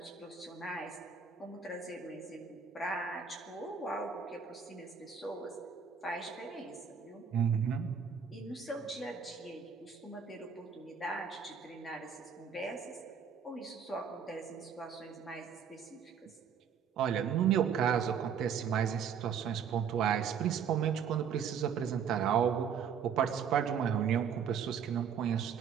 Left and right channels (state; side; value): quieter; left; 7.1 dB